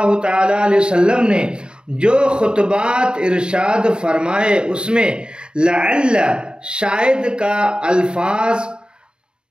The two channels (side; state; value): left; late; 0.050 ms